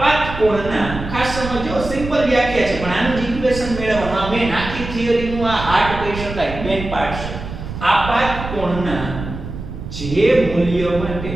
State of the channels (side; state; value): right; noise; rumble, 9 dB below the sound